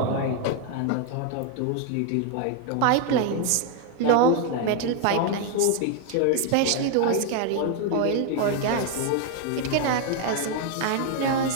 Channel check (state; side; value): different; both; correlation 0.00